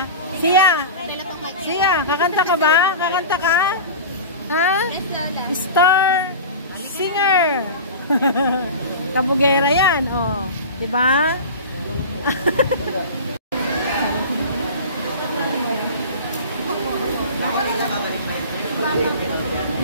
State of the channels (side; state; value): both; inverted; correlation -0.33